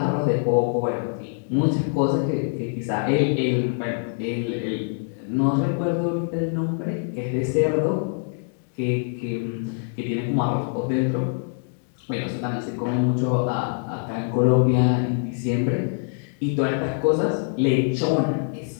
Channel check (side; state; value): right; silent; digital silence